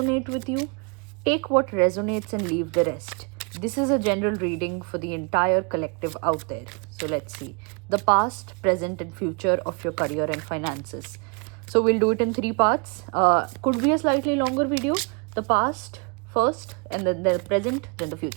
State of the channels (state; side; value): quieter; left; 34.7 dB